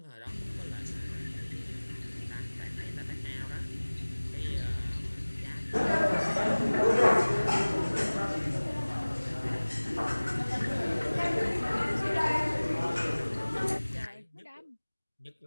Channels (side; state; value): both; inverted; correlation -1.00